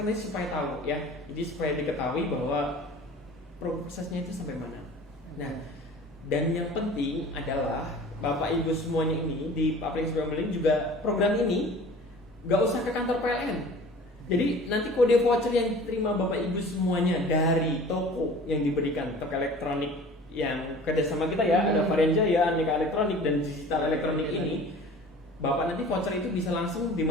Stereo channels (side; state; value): both; normal; correlation 0.44